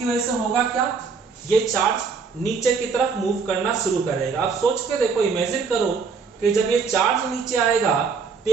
वजह से होगा क्या, ये चार्ज नीचे की तरफ मूव करना शुरू करेगा। अब सोच के देखो, इमेजिन करो कि जब ये चार्ज नीचे आएगा तो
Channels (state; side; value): quieter; left; 5.3 dB